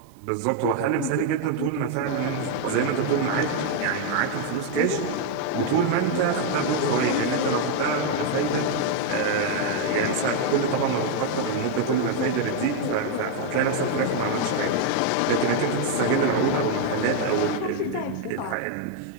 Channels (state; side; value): different; both; correlation 0.01